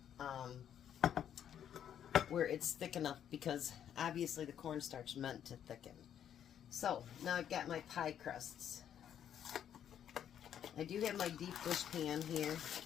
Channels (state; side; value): quieter; right; 9.5 dB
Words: where it's thick enough, because obviously the cornstarch meant to thicken. So now I've got my pie crusts. I do have my deep dish pan here,